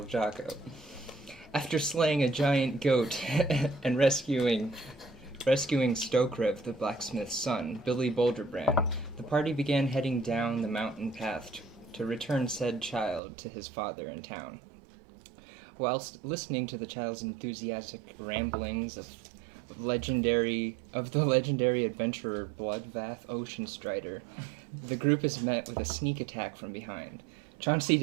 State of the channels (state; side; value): drops out; left; at 13.2 s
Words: Jocko. After slaying a giant goat and rescuing Stokrev, the blacksmith's son, Billy Boulderbrand, the party began heading down the mountain path to return said child to his father in town. Whilst listening to the child's enthusiastic ramblings of the legendary adventurer Bloodbath Oceanstrider, the group is met with a sneak attack from behind. Chauncey